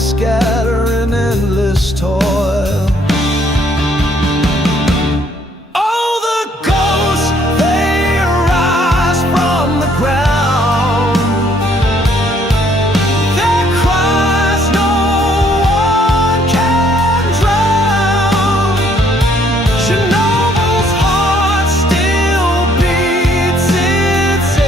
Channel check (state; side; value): normal; both; correlation 0.65